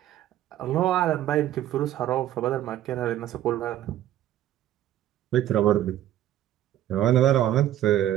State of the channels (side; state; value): left; quieter; 12.5 dB